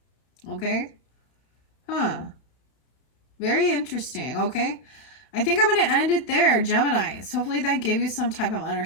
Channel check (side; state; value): right; late; 32 ms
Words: Okay? Very interesting. Okay? I think I'm going to end it there, Geminis. Hopefully that gave you some type of